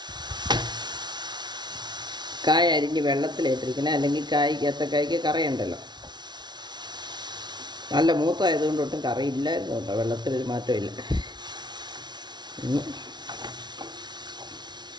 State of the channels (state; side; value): late; left; 0.20 ms